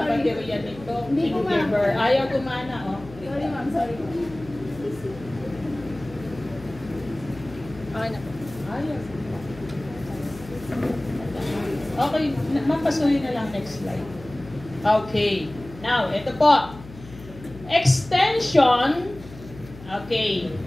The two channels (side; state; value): left; noise; hum, 17 dB below the sound